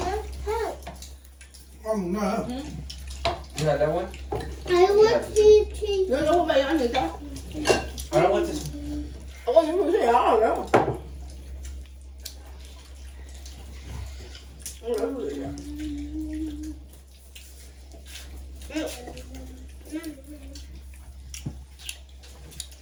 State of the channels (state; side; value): identical; both; correlation 1.00